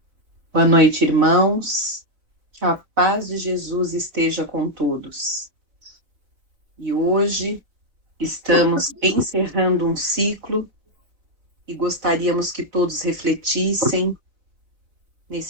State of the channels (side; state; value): left; late; 4.2 ms